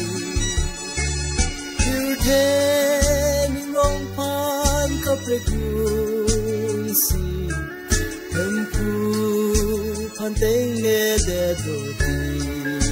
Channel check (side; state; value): both; identical; correlation 1.00